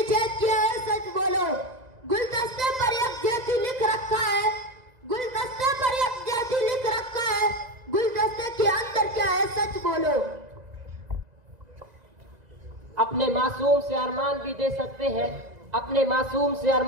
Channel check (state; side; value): late; left; 2.0 ms